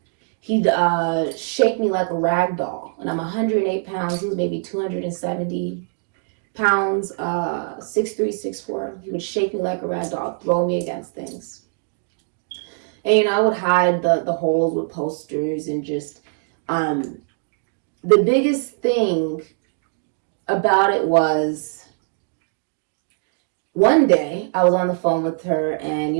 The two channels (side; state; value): left; silent; digital silence